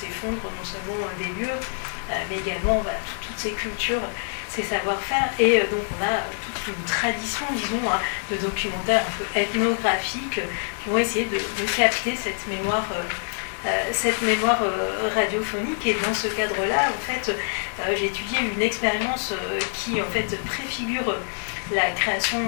non seulement des lieux, mais également toutes ces cultures, ces savoir-faire. Et donc on a toute une tradition, disons, de documentaires un peu ethnographiques qui vont essayer de capter cette mémoire radiophonique. Et dans ce cadre-là, en fait, j'ai étudié une expérience qui en fait préfigure la création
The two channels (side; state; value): right; silent; 62 dB below the other